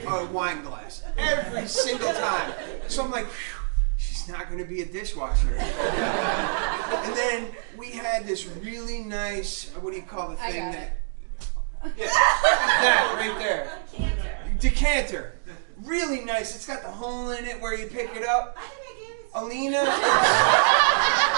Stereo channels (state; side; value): silent; left; digital silence